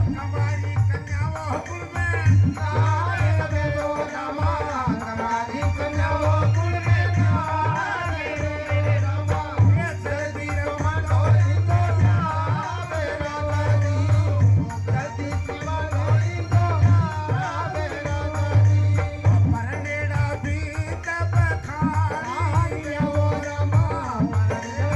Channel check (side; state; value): both; identical; correlation 1.00